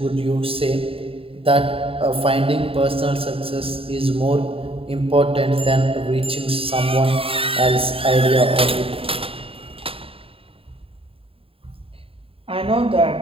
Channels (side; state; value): left; late; 0.27 ms